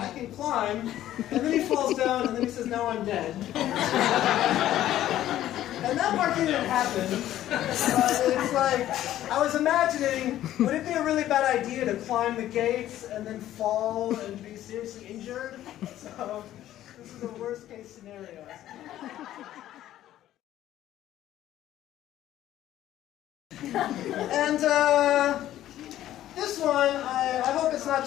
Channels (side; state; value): right; quieter; 13.0 dB